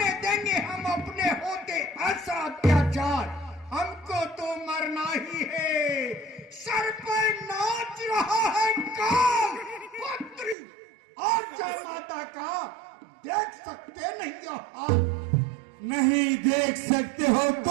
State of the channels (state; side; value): drops out; left; at 10.6 s